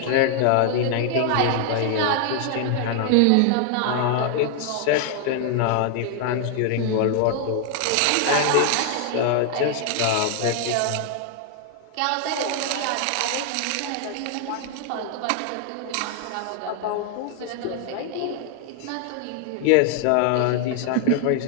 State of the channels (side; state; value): both; different; correlation 0.00